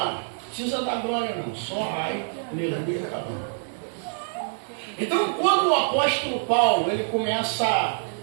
Não precisa dar glória não. Só ai, aleluia, tá bom. Então quando o apóstolo Paulo ele começa a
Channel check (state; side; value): silent; left; digital silence